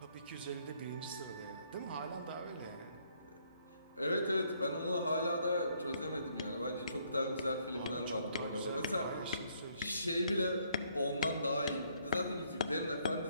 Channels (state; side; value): inverted; both; correlation -0.69